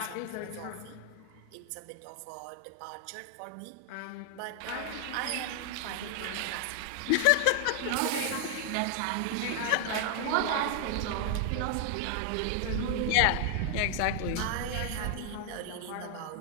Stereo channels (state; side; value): different; both; correlation 0.00